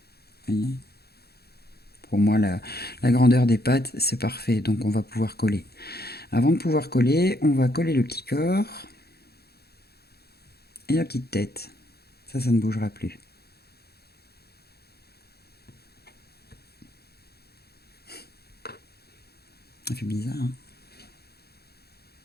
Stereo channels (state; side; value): late; right; 0.46 ms